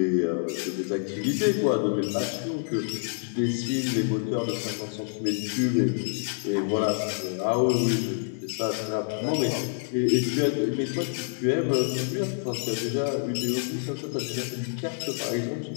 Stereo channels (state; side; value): silent; right; 60 dB below the other